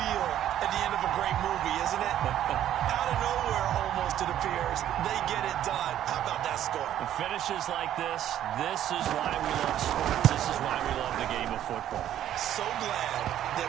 at the end of a great movie, isn't it? Out of nowhere, almost, it appears, they get it done. How about that score? The finishes like this is why we love sports. This is why we love the game of football. So glad that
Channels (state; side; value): quieter; left; 11.5 dB